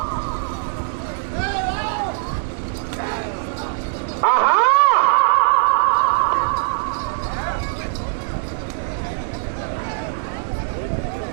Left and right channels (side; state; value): left; silent; digital silence